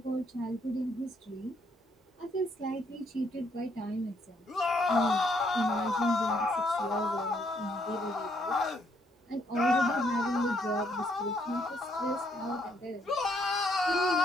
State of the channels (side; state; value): both; normal; correlation 0.71